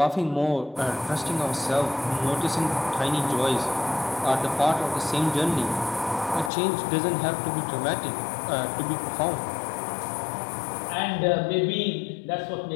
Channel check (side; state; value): right; drops out; at 6.5 s